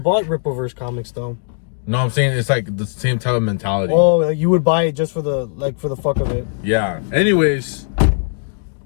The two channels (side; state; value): right; silent; digital silence